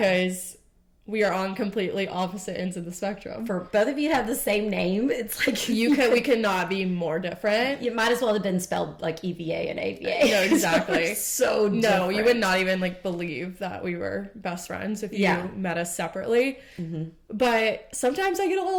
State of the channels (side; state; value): both; identical; correlation 1.00